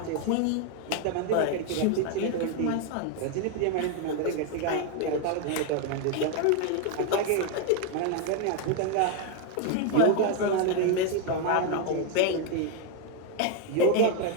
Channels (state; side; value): different; both; correlation 0.01